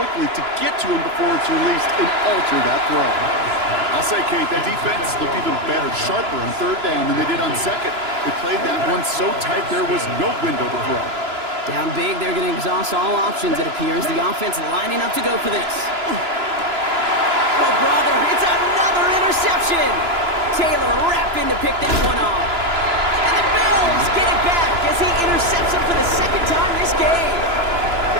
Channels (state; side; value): late; left; 2.9 ms